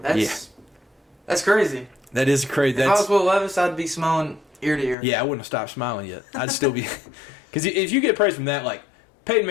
crazy. That is crazy. If I was Will Levis, I'd be smiling ear to ear. Yeah, I wouldn't have stopped smiling yet. I'd still be, because if you get praise from that, like Peyton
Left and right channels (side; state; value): right; drops out; at 5.0 s